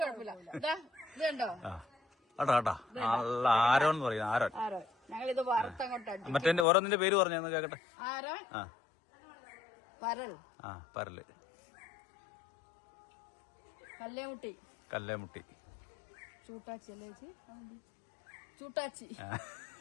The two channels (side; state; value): right; drops out; at 6.7 s